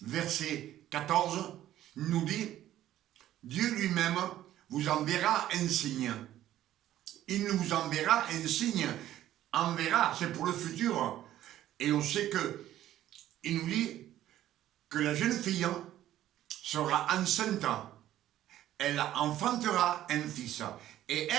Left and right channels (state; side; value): quieter; left; 13.0 dB